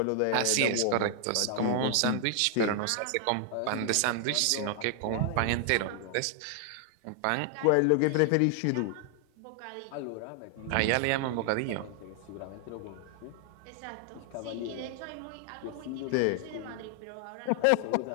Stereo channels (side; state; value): both; different; correlation 0.00